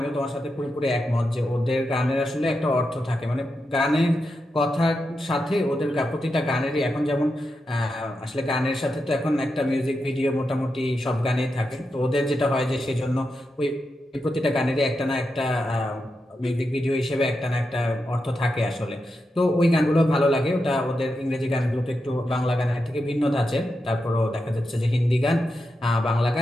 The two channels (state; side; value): normal; both; correlation 0.87